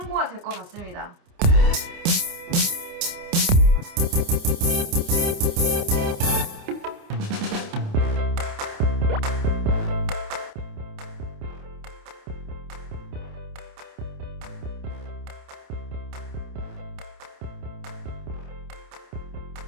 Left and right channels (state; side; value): late; left; 28 ms